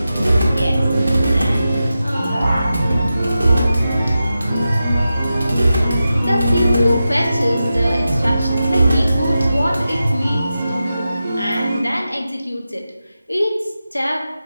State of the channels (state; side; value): inverted; both; correlation -0.92